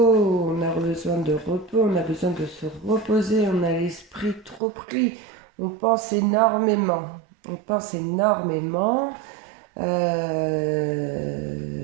on a besoin de se reposer, on a l'esprit trop pris, on pense énormément. Et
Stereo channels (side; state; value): left; drops out; at 4.6 s